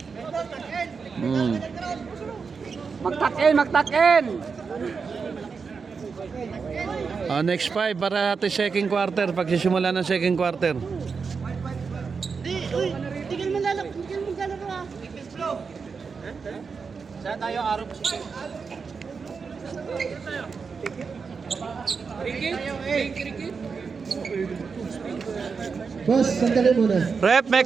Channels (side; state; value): left; quieter; 5.3 dB